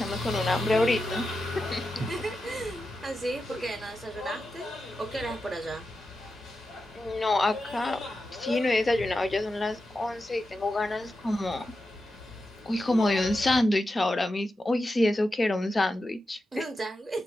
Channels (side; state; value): both; normal; correlation 0.90